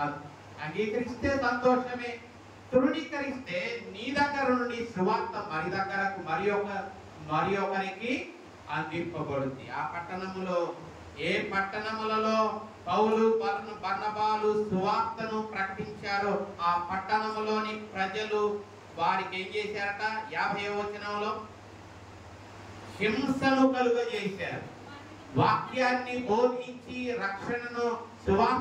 అంగీకరిస్తే సంతోషమే. తృణీకరిస్తే నీ దగ్గర నుండి సువార్త మరి ఒకరికి అందింపబడుద్ది. ఆ పట్టణములో, ఏ పట్టణములలో పౌలు బర్నబాలు సువార్తను ప్రకటించారో ఆ పట్టణములోని ప్రజలు వారికి ఏం చేశారట? 50వ వచనంలో హింసను కలుగజేశారు. వాక్యాన్ని బోధించి రక్షణను,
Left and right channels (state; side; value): identical; both; correlation 1.00